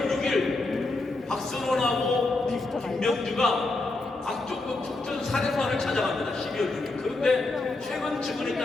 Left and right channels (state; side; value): quieter; right; 3.1 dB